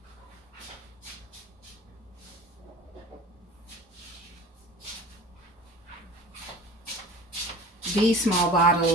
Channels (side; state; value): both; normal; correlation 0.40